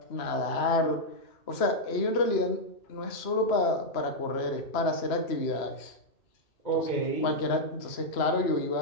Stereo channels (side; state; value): right; late; 2.9 ms